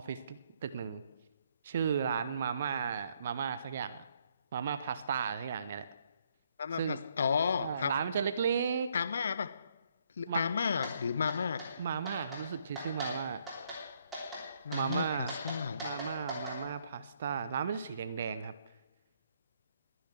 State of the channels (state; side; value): inverted; both; correlation -0.70